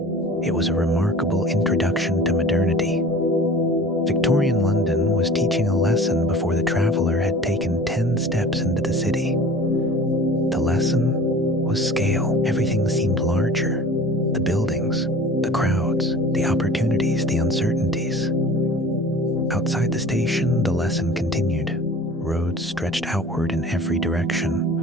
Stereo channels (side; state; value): both; normal; correlation 0.42